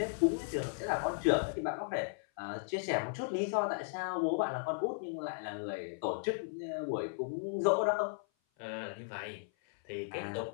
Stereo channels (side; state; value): right; silent; 54 dB below the other